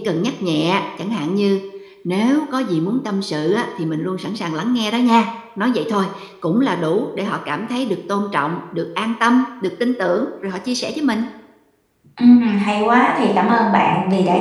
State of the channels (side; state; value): both; identical; correlation 1.00